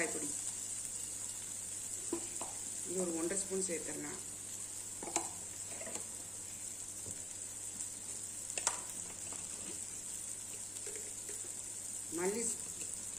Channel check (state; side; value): normal; both; correlation 0.96